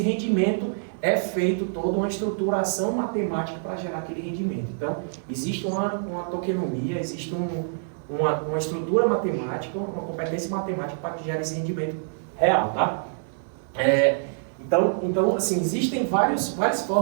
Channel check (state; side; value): silent; left; digital silence